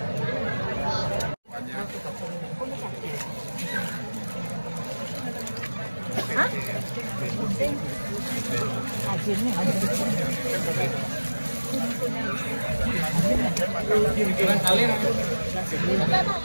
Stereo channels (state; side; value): inverted; both; correlation -1.00